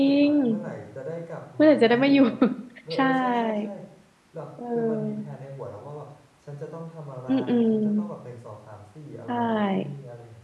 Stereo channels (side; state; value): both; identical; correlation 1.00